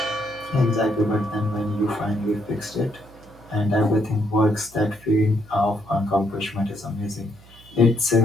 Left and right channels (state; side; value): noise; right; hum, 24 dB below the sound